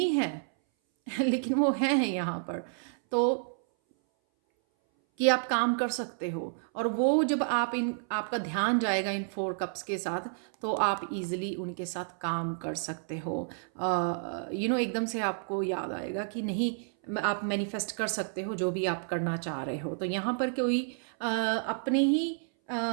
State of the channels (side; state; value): left; silent; 58 dB below the other